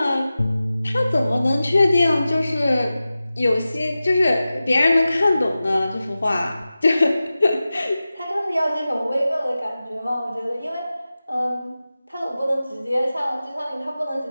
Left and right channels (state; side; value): inverted; both; correlation -0.95